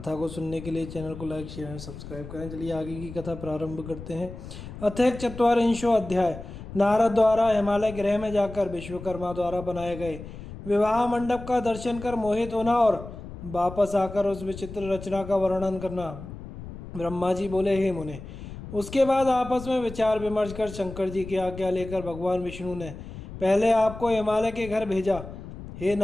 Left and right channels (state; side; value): noise; left; rumble, 12 dB below the sound